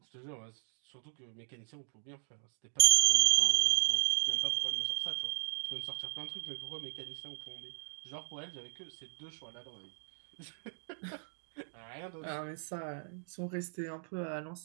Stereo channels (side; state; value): left; silent; digital silence